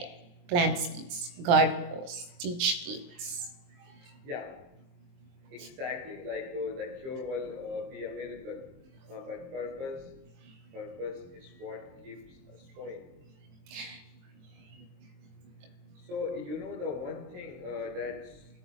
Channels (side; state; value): left; late; 23 ms